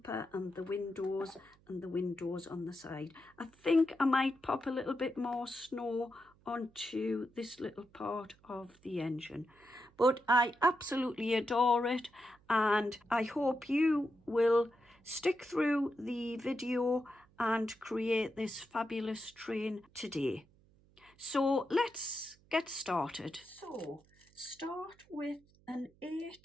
and the windows on the side. I think I might pop a little bit more snow onto this little part of the engine, but I absolutely adore it, and I hope you will stick through the video and create this fabulous train today. So let's get started. So start with an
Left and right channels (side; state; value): right; noise; hum, 30 dB below the sound